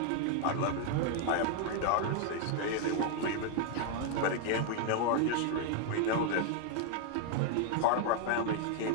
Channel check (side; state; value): both; different; correlation 0.00